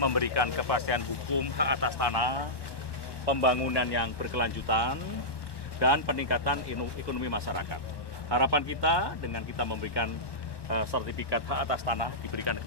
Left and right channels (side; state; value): right; late; 1.1 ms